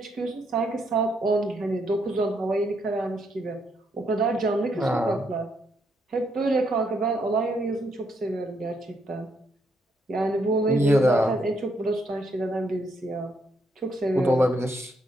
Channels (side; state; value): both; normal; correlation 0.75